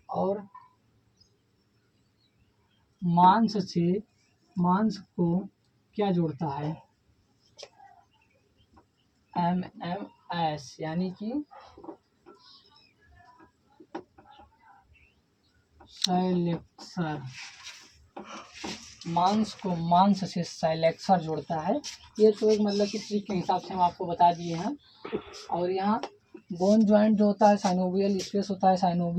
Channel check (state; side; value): identical; both; correlation 1.00